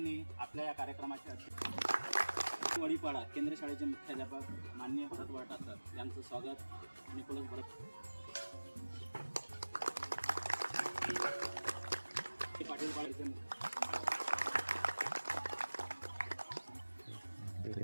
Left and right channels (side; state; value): both; inverted; correlation -1.00